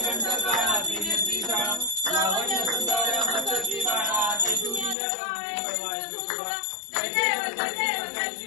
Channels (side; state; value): right; drops out; at 5.0 s